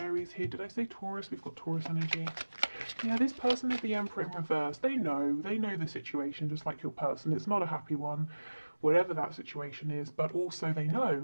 here. Did I say Taurus? We've got Taurus energy. Yeah, this person is the Emperor in reverse. They know the situation, just like your person. It's not a happy one, whatever that situation is, but also they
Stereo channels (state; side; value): inverted; both; correlation -1.00